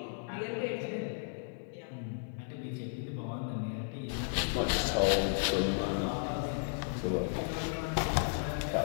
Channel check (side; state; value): right; silent; digital silence